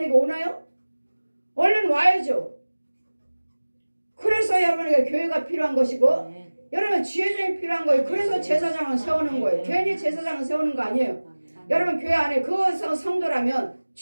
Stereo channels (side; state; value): both; inverted; correlation -1.00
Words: 오나요? 얼른 와야죠. 그래서 여러분에게 교회가 필요한 것이고 여러분 지혜정이 필요한 거예요. 그래서 제사장을 세우는 거예요. 괜히 제사장을 세우는 거 아니에요. 여러분 교회 안에 그 성도라면